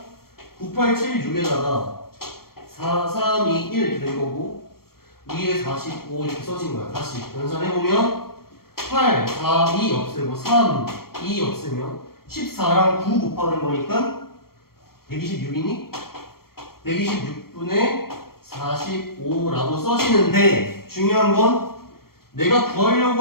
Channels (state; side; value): late; right; 0.94 ms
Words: 9, 8, 7, 6에다가 4, 3, 2, 1 이렇게 된 거고 위에 45 이렇게 써진 거야. 다시 연산해보면 8, 4, 2 없애고 3, 2 없애면 14랑 9 곱하는 거니까 126이니? 126분의 45라고 써지는데 중요한 건 내가